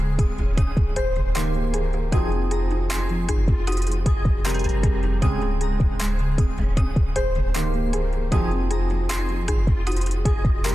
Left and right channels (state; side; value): normal; both; correlation 0.94